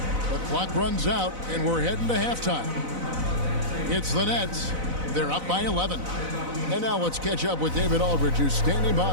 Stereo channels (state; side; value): late; left; 4.0 ms